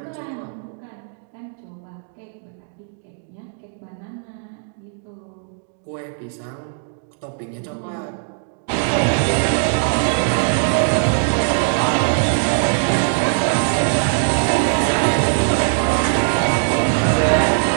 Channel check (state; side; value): silent; left; digital silence